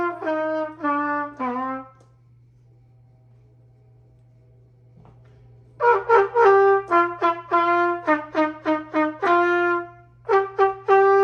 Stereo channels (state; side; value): identical; both; correlation 1.00